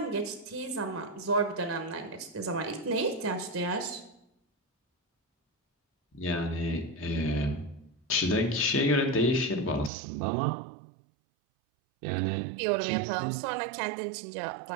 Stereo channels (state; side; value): drops out; left; at 9.9 s